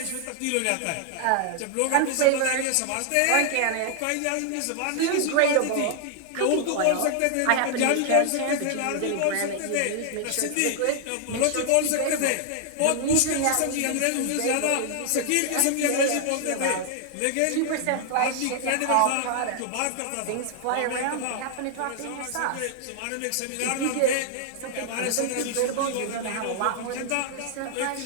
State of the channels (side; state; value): both; different; correlation 0.00